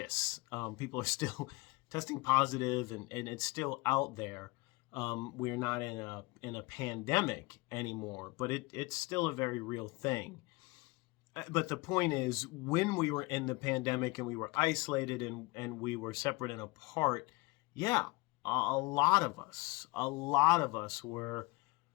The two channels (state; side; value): quieter; right; 23.8 dB